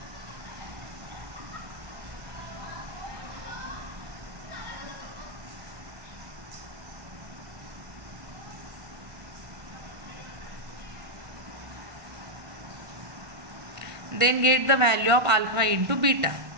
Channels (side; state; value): left; late; 1.5 ms